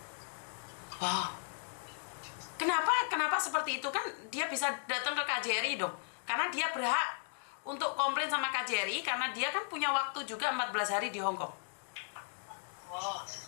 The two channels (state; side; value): silent; right; digital silence